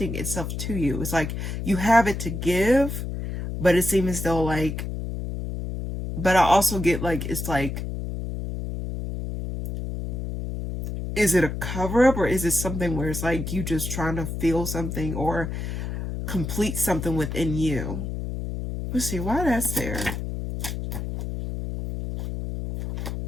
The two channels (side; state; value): left; noise; hum, 5 dB below the sound